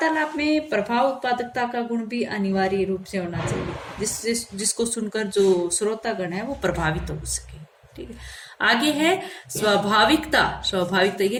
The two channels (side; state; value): both; identical; correlation 1.00